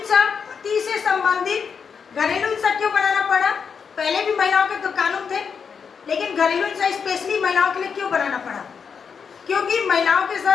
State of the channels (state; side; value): quieter; right; 6.3 dB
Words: पति से संबंधित घरेलू हिंसा क्यों बनाना पड़ा? पहले भी महिलाओं के तो कानून थे, लेकिन घरेलू हिंसा स्पेशली महिलाओं के लिए क्यों बनाना पड़ा? क्योंकि महिलाओं के